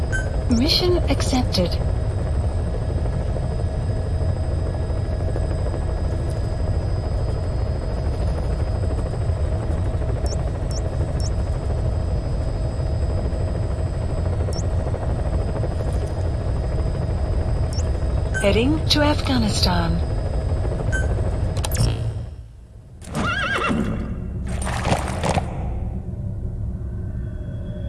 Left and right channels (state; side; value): identical; both; correlation 1.00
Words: Mission accepted. Heading to Afghanistan.